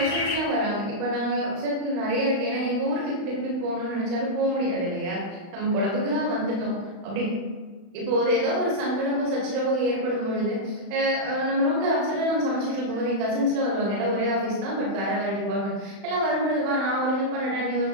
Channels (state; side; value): late; left; 35 ms